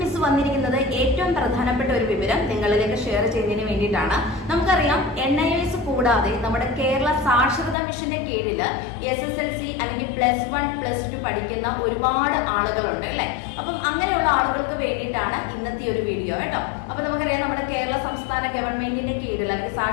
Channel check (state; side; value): drops out; right; at 7.8 s